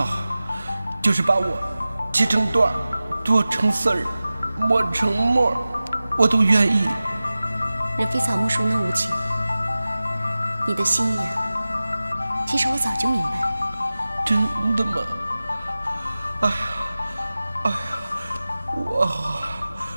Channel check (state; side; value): inverted; both; correlation -0.96